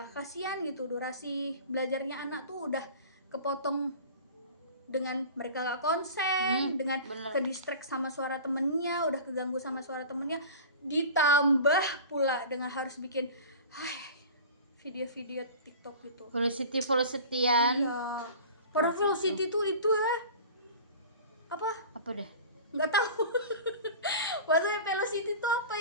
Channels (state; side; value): inverted; both; correlation -0.38